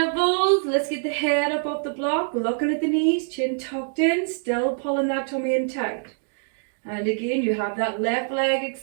Let's get the head up off the block. Looking at the knees. Chin tucked in. Still pulling that tummy in tight. And again, you have that left leg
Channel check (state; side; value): silent; left; digital silence